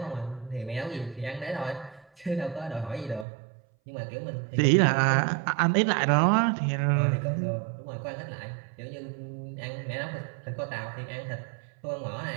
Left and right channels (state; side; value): drops out; left; at 3.2 s